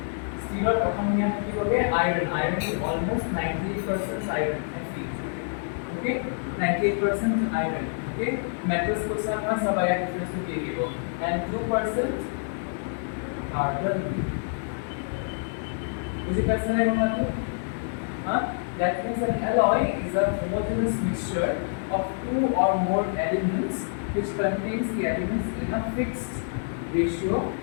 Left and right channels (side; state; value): right; silent; digital silence